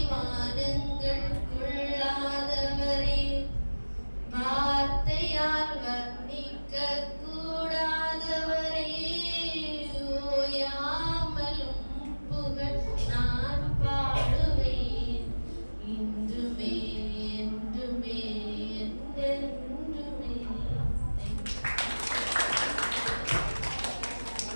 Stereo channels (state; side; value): inverted; both; correlation -1.00